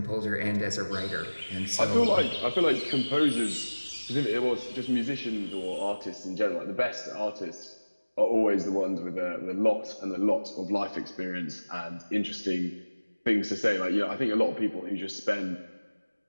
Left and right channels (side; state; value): both; inverted; correlation -1.00